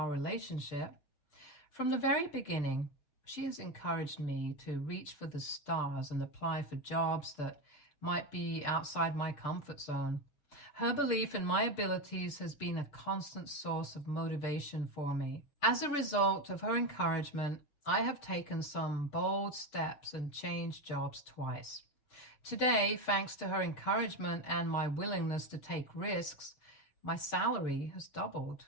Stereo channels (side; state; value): right; late; 6.8 ms